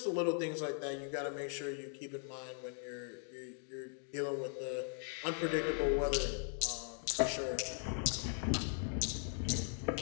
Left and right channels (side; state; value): right; silent; 52 dB below the other